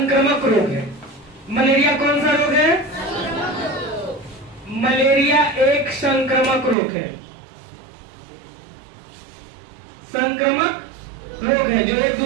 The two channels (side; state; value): left; drops out; at 6.8 s